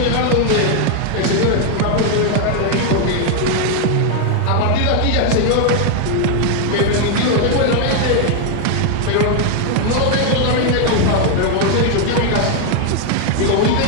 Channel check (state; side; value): different; both; correlation 0.00